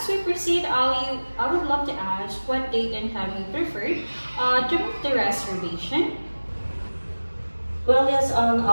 we proceed, Ali, I would love to ask what date and time you prefer to make the reservation. Well, yes,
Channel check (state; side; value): inverted; both; correlation -1.00